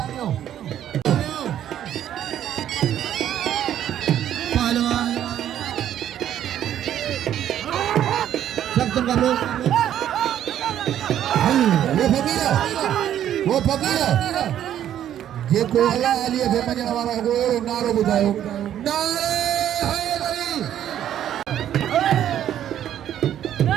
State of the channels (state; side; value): quieter; left; 10.9 dB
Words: पहलवान सब तुम कर लो वो फकीर जे को अल्लाह अली के मजन वाला को नारो बुझायो नारे